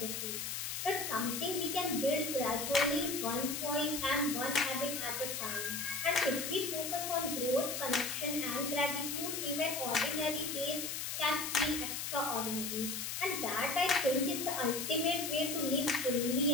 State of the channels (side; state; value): left; noise; hiss, 3 dB below the sound